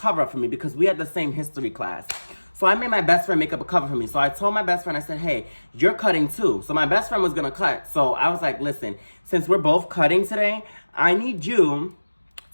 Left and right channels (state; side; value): inverted; both; correlation -1.00